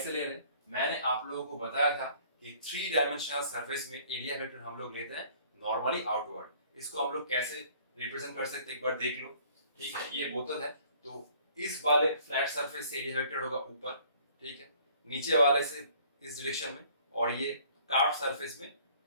ले रहे हैं, मैंने आप लोगों को बताया था कि 3 डायमेंशनल सरफेस में एरिया वेक्टर हम लोग लेते हैं नॉर्मली आउटवर्ड। इसको हम लोग कैसे रिप्रेजेंट कर सकते हैं एक बार देख लो, ठीक है। ये बोतल है, तो इस वाले फ्लैट सरफेस से एरिया वेक्टर होगा ऊपर, ठीक है, नीचे वाले से इस डायरेक्शन में, और ये कार्व सरफेस में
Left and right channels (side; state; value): both; inverted; correlation -0.56